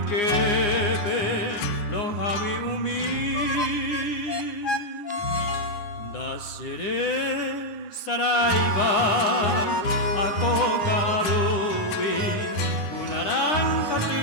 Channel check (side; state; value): right; late; 9.8 ms